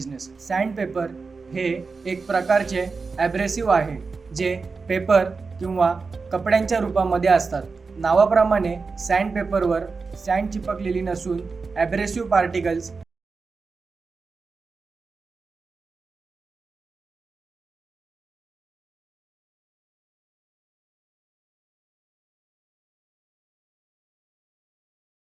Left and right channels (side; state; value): left; quieter; 4.5 dB